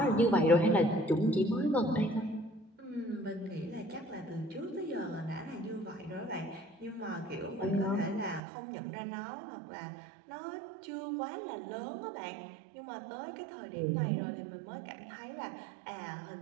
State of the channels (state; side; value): drops out; left; at 8.4 s